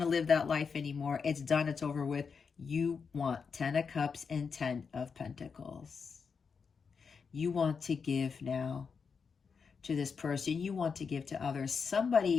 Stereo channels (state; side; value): quieter; right; 5.7 dB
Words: to live that life anymore. It's done. It's over with. You want 10 of Cups and 10 of Pentacles. You want to give now to this person. You want to give to others.